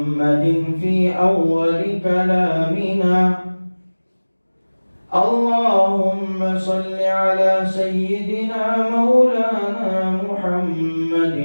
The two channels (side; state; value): both; inverted; correlation -1.00